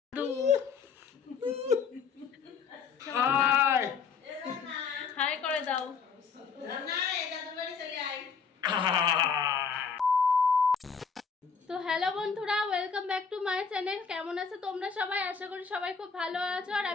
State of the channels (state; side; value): quieter; right; 5.8 dB